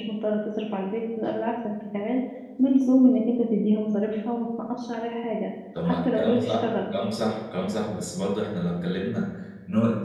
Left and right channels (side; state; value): both; identical; correlation 1.00